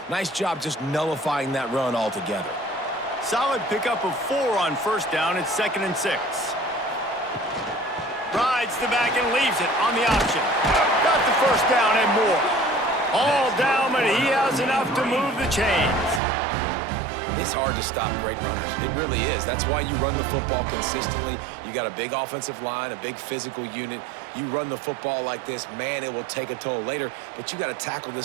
Nice job just nullifying that run altogether. Solid pickup of 4 on first down. It's 2nd and 6. Rides the back and leaves it on the option. Got the first down and more. All down, but he has enough to move the chains. It's hard to stop great runners. It really is. That's why you run the football consistently. You got a big offensive line, a big physical unit. You run the football like this, man, it will take a toll later. But you got to tackle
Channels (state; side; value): drops out; left; at 16.2 s